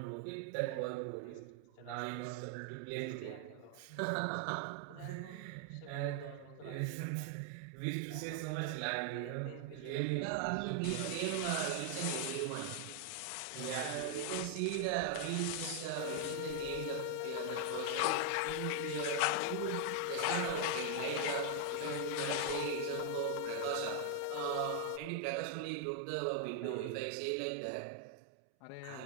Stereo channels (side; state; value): both; different; correlation 0.00